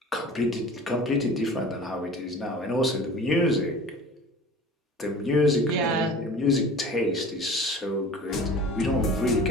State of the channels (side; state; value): both; normal; correlation 0.41